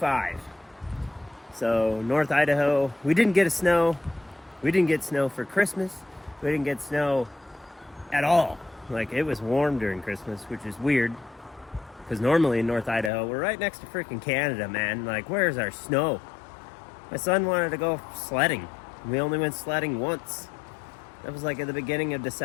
So North Idaho, we didn't get snow. We didn't get snow for Christmas. We didn't get snow at all. Like, it was warm during Christmas, which is weird, because normally in North Idaho, we're right next to freaking Canada, man. Like, where's our snow? My son wanted to go sledding. We only went sledding once. That was like at the beginning of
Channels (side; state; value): right; drops out; at 13.1 s